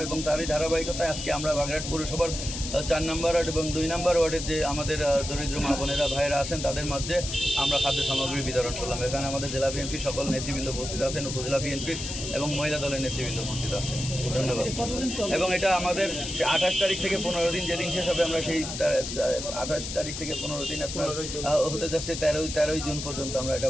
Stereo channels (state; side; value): noise; left; hiss, 6 dB below the sound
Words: এবং তারই ধারাবাহিকতায় আজকে আমরা বাগেরহাট পৌরসভার 4 নম্বর ওয়ার্ড এবং 2 নম্বর ওয়ার্ডের যে আমাদের দরিদ্র মা বোনেরা ভাইয়েরা আছেন তাদের মধ্যে আমরা খাদ্য সামগ্রী বিতরণ করলাম। এখানে আমাদের জেলা বিএনপি সকল নেতৃবৃন্দ উপস্থিত আছেন, উপজেলা বিএনপির এবং মহিলা দলের নেতৃবৃন্দ উপস্থিত আছেন। ধন্যবাদ। এবং এটা আমাদের 28 তারিখ থেকে 15 দিন, যেদিন শেষ হবে আমরা সেই 28 তারিখ থেকে 15 দিন আপনার হতে যাচ্ছে 13ই জুন পর্যন্ত আমরা এটা